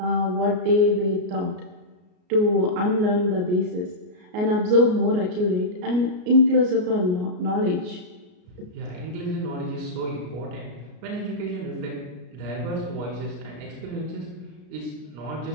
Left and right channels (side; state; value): left; late; 33 ms